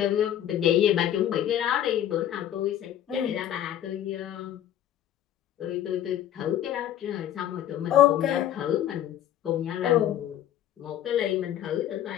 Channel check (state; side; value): quieter; right; 11.4 dB